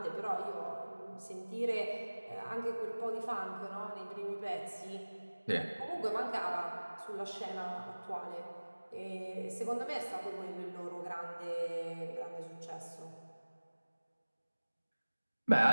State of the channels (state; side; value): inverted; both; correlation -1.00